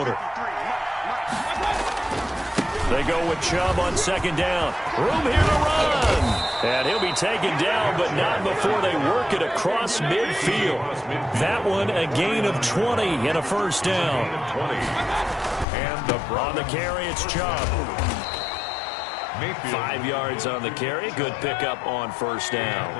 They go with Chubb on 2nd down. Room here to run. And he'll be taken down, but not before they work it across midfield. That one, a gain of 20 and a 1st down. And on the carry, it's Chubb. 5 yards on the carry. Good pickup on 1st down.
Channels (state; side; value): drops out; right; at 15.7 s